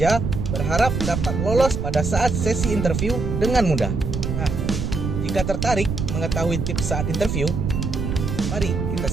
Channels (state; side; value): noise; right; rumble, 2 dB below the sound